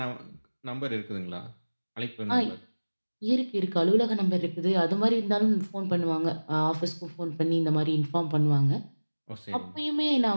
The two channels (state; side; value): inverted; both; correlation -1.00